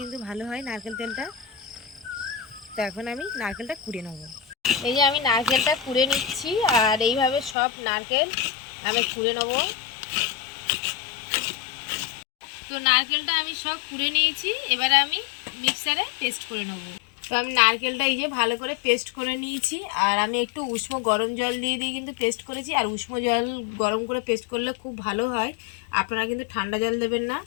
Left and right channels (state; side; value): drops out; right; at 7.6 s